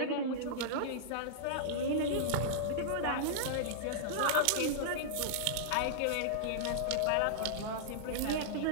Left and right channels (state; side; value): different; both; correlation -0.02